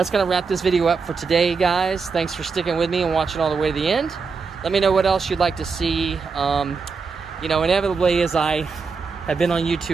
going to wrap this video up for today, guys. Thanks for sticking with me and watching all the way to the end. Let me know what else you'd like to see. You know, inevitably, as I have been on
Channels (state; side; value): quieter; left; 5.0 dB